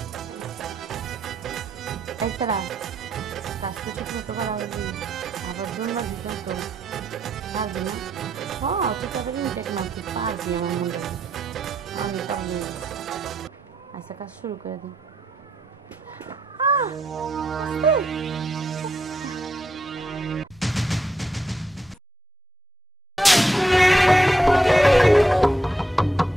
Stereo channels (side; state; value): both; normal; correlation 0.78